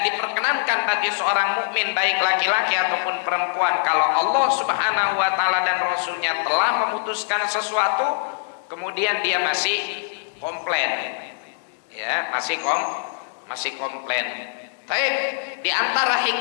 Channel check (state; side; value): silent; right; digital silence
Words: diperkenankan bagi seorang mukmin baik laki-laki ataupun perempuan, kalau Allah Subhanahu wa taala dan rasulnya telah memutuskan sesuatu kemudian dia masih komplain, ya, masih komplain. Baik, di antara